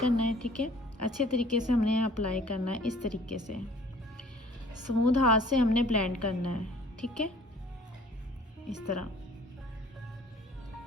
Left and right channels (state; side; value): normal; both; correlation 0.53